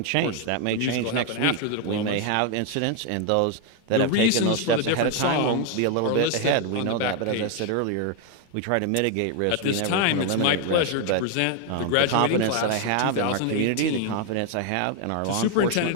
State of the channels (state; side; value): different; both; correlation 0.01